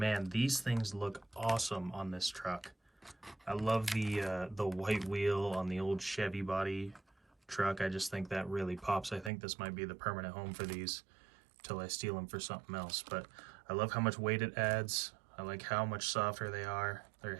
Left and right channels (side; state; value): left; drops out; at 9.3 s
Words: these things look awesome on this truck. I love the white wheel on the old Chevy body truck. I just think that really pops. I think this might be the permanent home for these till I steal them for something else. But I love how much weight it adds. I like how much softer they are. They